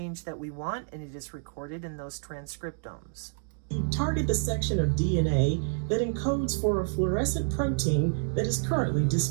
that we want, and it is recorded in those transcriptomes. Target the section of DNA that encodes for a fluorescent protein that is currently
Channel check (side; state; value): left; silent; digital silence